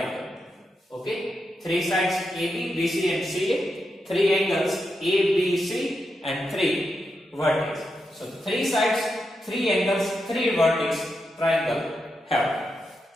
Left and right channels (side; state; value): both; normal; correlation 0.86